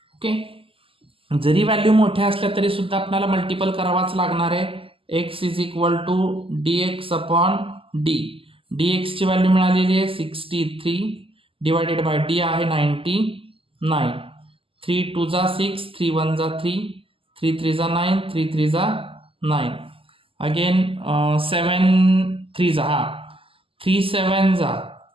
ओके. जरी व्हॅल्यू मोठ्या असल्या तरी सुद्धा आपल्याला मल्टिपल करावाच लागणार आहे. x is equal to dx upon d. dx ची व्हॅल्यू मिळालेली आहे 63 डिवायडेड बाय d आहे 99. 3 2 जा 6, 3 1 जा 3, 3 3 जा 9, 3 3 जा 9. अगेन 7 3 जा 3 7 जा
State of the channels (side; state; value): left; late; 0.26 ms